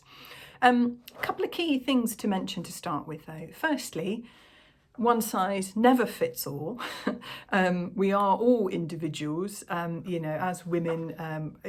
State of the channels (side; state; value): both; identical; correlation 1.00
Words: A couple of key things to mention to start with though. Firstly, one size never fits all. We are all individuals, as women,